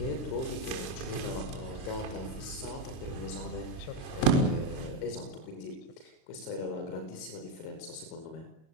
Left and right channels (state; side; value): late; right; 37 ms